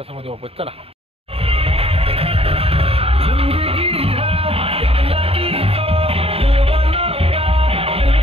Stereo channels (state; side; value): late; left; 0.28 ms